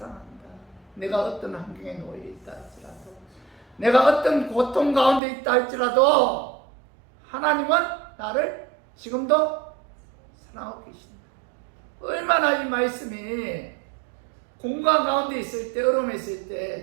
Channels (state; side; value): drops out; left; at 5.2 s